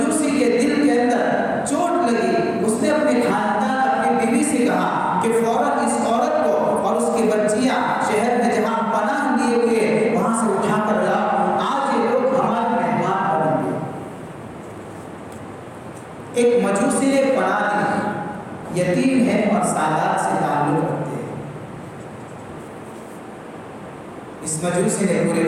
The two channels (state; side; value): identical; both; correlation 1.00